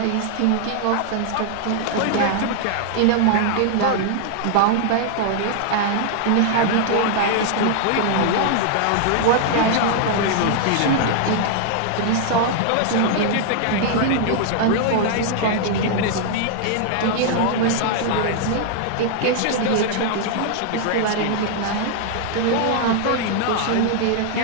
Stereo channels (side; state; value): both; different; correlation -0.01